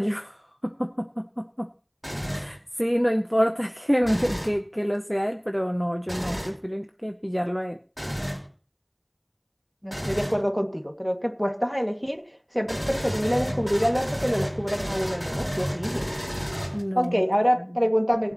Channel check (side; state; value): both; identical; correlation 1.00